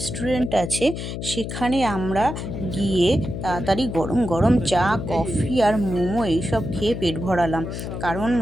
আছে, সেখানে আমরা গিয়ে তাড়াতাড়ি গরম গরম চা, কফি আর মোমো এইসব খেয়ে পেট ভরালাম, কারণ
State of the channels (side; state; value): left; noise; hum, 6 dB below the sound